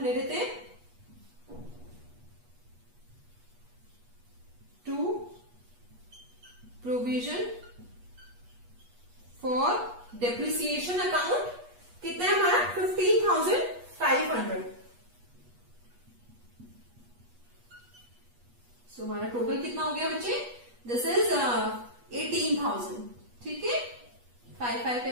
ले लेते हैं. 2 प्रोविजन फॉर डेप्रिसिएशन अकाउंट कितना है हमारा 15,500. सो हमारा टोटल कितना हो गया बच्चे? This is 18,000. ठीक है, 5, 5,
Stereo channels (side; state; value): left; late; 8.3 ms